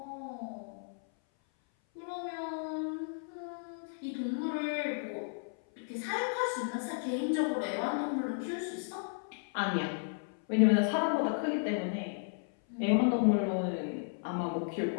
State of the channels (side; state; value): right; silent; 55 dB below the other